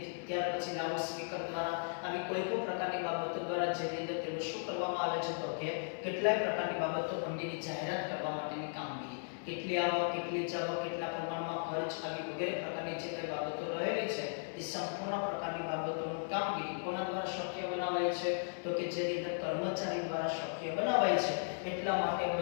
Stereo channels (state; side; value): silent; right; 53 dB below the other